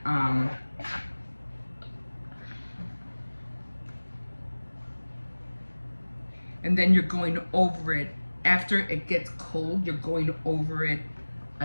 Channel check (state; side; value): inverted; both; correlation -1.00